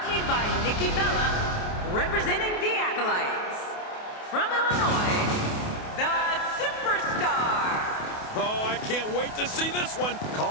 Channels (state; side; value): late; right; 28 ms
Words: by Nikki Bella, representing the Acolytes. From Illinois, the Superstar. Oh, I can't wait to see this one.